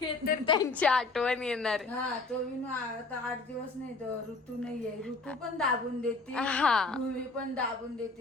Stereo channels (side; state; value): right; quieter; 3.6 dB